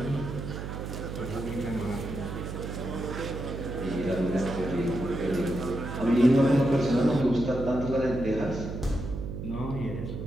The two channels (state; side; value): noise; right; hum, 6 dB below the sound